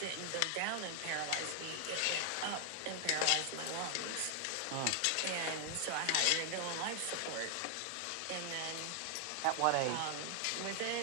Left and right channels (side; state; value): both; different; correlation 0.00